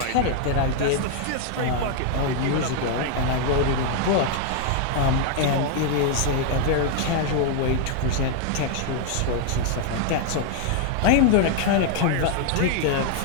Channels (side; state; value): both; different; correlation 0.00